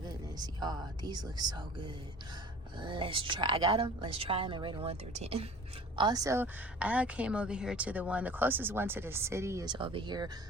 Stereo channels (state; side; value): normal; both; correlation 0.44